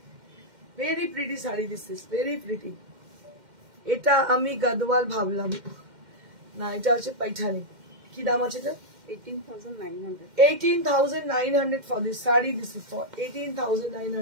Very pretty sari, this is very pretty. এটা আমি গাদওয়াল ভাবলাম, না এটা হচ্ছে পাইঠানি। কি দাম আছে এটা? 18,900. 18,900 for this saree. This is for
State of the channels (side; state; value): left; late; 2.1 ms